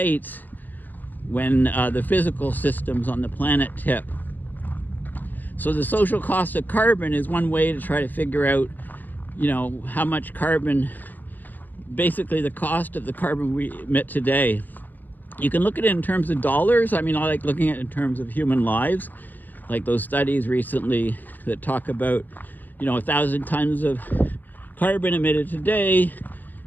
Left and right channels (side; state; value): right; late; 0.086 ms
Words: when the physical systems on the planet tip. So the social cost of carbon is one way to try to figure out, you know, how much carbon, basically the cost of the carbon we emit today. You can look at it in terms of dollars. I mean, I like looking at it in terms of human lives, like those studies recently that talk about, you know, 1,000 tons of carbon emitted today